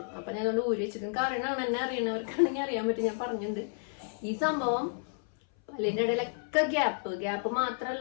അപ്പൊ ഞാൻ അതുകൊണ്ട് ഊരി വെച്ചിട്ട് കാരണമാണ്, എന്നെ അറിയണവർക്കാണെങ്കിൽ അറിയാൻ പറ്റും. ഞാൻ പറഞ്ഞിട്ടുണ്ട് ഈ സംഭവം. പല്ലിന്റെ ഇടയിലൊക്കെ ഗ്യാപ്പ്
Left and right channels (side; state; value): right; silent; 57 dB below the other